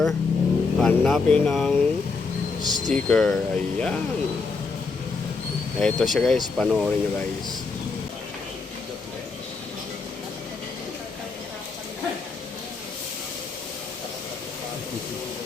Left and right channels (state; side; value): quieter; right; 4.4 dB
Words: hanapin ang sticker. Ayan. Ito siya guys, panoorin nyo guys.